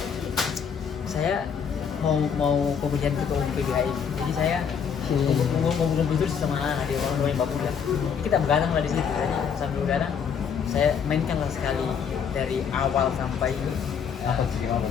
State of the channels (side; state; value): right; quieter; 7.1 dB